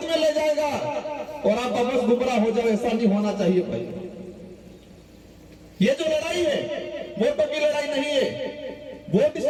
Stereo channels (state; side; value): identical; both; correlation 1.00